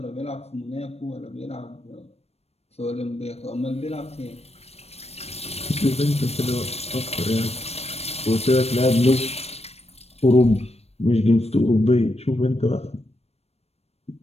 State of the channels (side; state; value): right; late; 0.30 ms